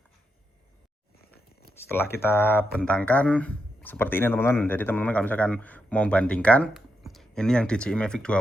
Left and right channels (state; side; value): normal; both; correlation 0.84